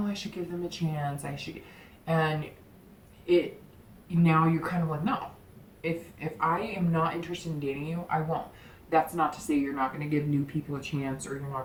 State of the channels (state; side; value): identical; both; correlation 1.00